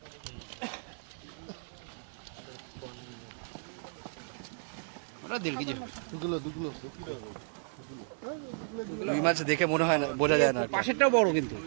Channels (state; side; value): silent; left; 56 dB below the other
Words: ওটা 1.5 কেজি হবে। রুই মাছ দেখে মনে হয় না, বোঝা যায় না। পাশেরটাও বড় কিন্তু।